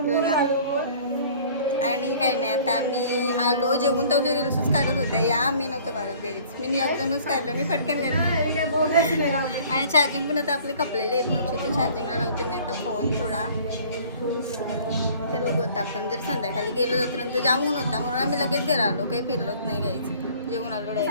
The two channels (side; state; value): both; inverted; correlation -0.52